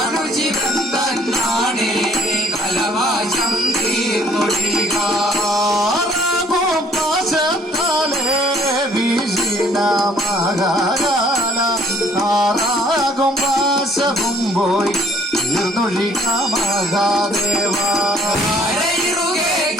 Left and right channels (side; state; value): both; normal; correlation 0.60